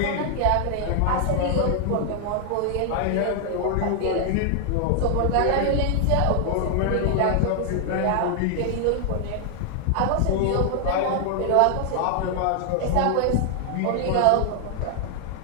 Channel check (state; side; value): different; both; correlation 0.00